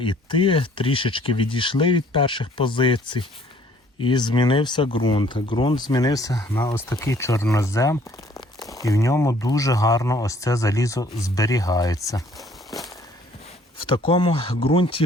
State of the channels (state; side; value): normal; both; correlation 0.58